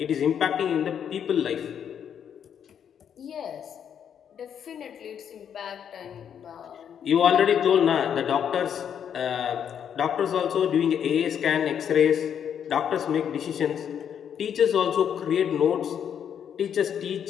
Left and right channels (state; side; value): quieter; right; 8.5 dB